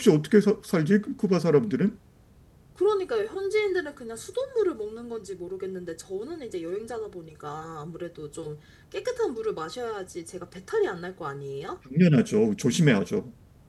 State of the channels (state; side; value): identical; both; correlation 1.00